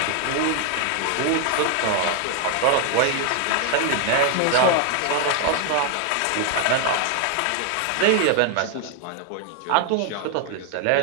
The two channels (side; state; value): both; different; correlation 0.00